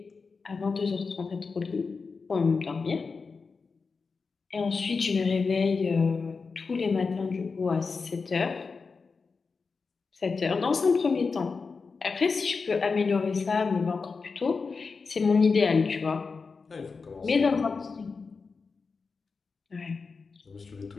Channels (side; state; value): right; quieter; 4.7 dB